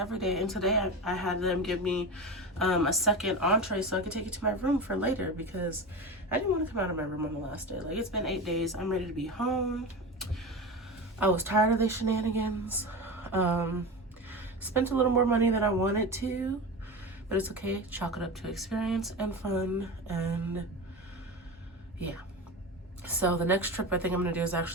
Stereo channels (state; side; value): normal; both; correlation 0.25